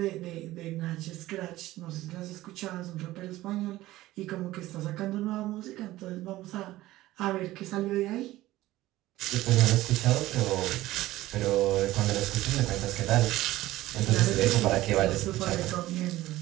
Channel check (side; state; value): left; quieter; 16.6 dB